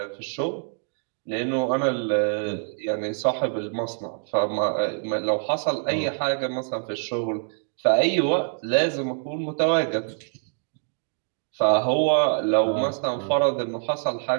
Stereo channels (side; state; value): left; silent; digital silence